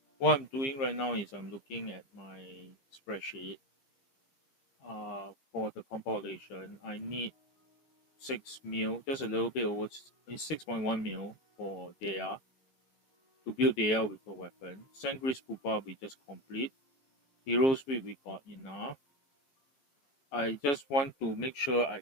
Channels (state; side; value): late; right; 15 ms